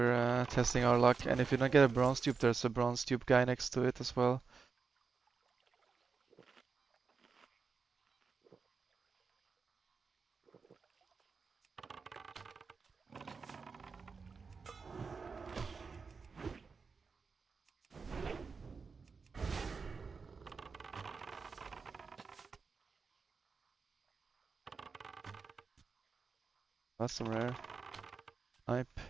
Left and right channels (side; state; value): left; quieter; 5.0 dB